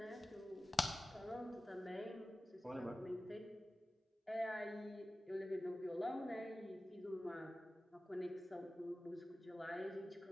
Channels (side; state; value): both; normal; correlation 0.95